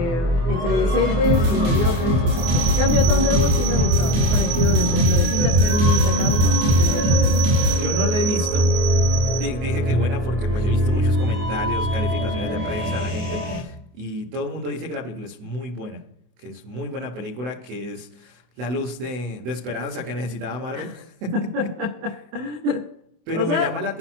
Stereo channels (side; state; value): left; late; 24 ms